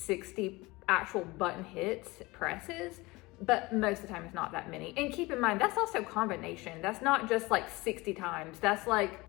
actual button hits, presses, but most of the time it's not that many. And keep in mind, that's also combination. That's not just like 60 times. That's like,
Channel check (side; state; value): right; quieter; 22.3 dB